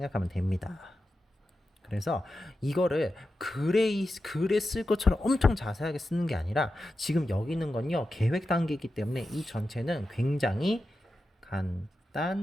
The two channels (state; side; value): normal; both; correlation 0.91